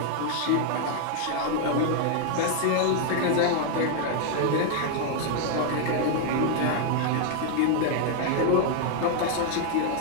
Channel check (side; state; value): both; different; correlation 0.00